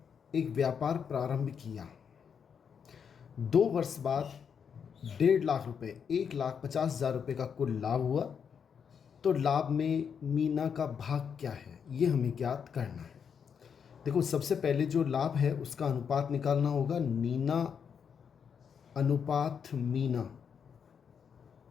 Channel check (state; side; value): quieter; right; 7.0 dB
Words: एक व्यापार प्रारंभ किया। 2 वर्ष बाद 1.5 लाख रुपये 1,50,000 रुपये का कुल लाभ हुआ। तो लाभ में मीना का भाग क्या है, ये हमें ज्ञात करना है। देखो, सबसे पहले जो लाभ है उसका अनुपात निकालना होगा। नीना अनुपात मीना,